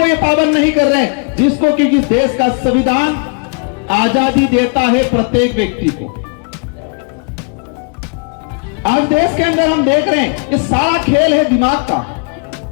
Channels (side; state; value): right; quieter; 37.3 dB